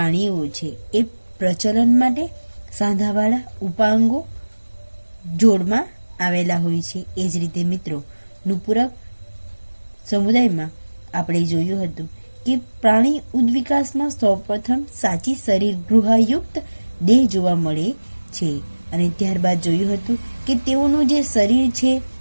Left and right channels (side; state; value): both; inverted; correlation -1.00